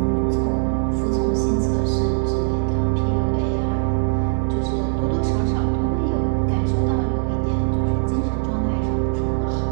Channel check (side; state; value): left; silent; 65 dB below the other